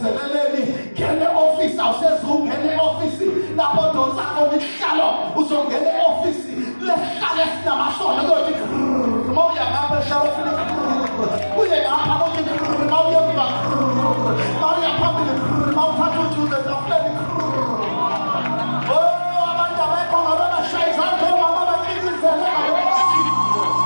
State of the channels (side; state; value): both; inverted; correlation -1.00